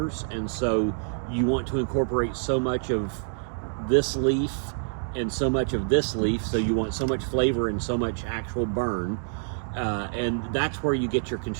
and so you want to incorporate so much of this leaf and so much of this leaf, so you want so much flavor and so much actual burn, and that's where you get your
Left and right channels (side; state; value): left; silent; digital silence